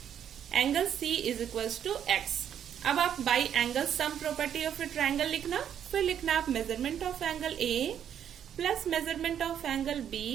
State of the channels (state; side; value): quieter; left; 9.3 dB